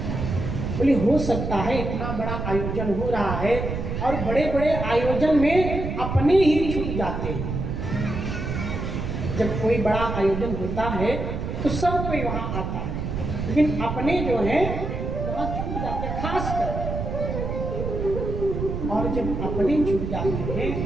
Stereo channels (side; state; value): right; noise; rumble, 4 dB below the sound